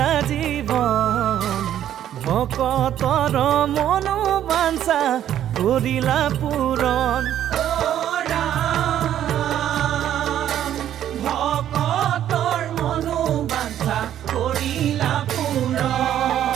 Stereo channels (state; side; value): quieter; left; 11.0 dB